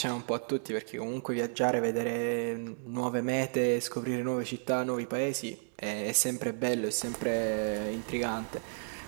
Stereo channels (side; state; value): left; silent; digital silence